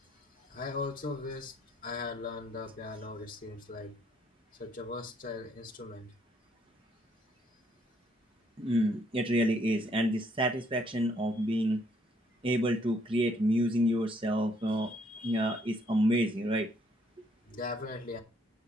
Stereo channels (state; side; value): normal; both; correlation 0.68